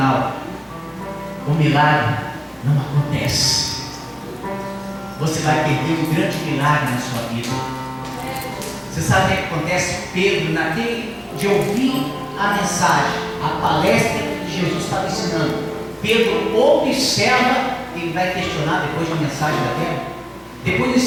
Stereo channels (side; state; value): both; identical; correlation 1.00